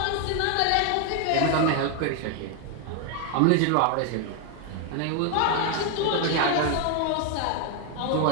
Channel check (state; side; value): different; both; correlation 0.01